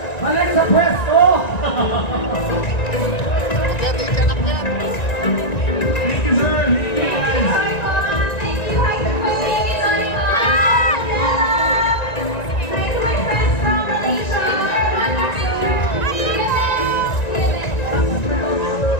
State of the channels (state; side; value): late; right; 1.9 ms